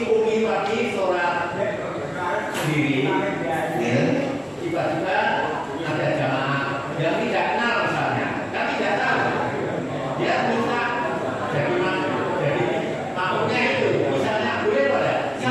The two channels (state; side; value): identical; both; correlation 1.00